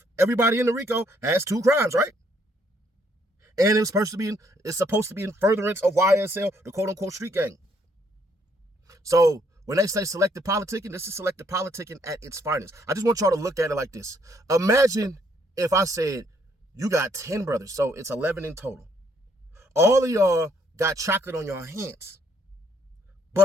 Everybody in the RICO has 2 crimes, right? And it's supposed to be in furtherance of YSL, the quote-unquote street gang. So when they say selective politicking, this is selective politicking at its finest. I just want y'all to look at it like this. Imagine if I said, you got 10 brothers, so it's 11 in total. All of y'all got chocolate on your hands,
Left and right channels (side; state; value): both; normal; correlation 0.69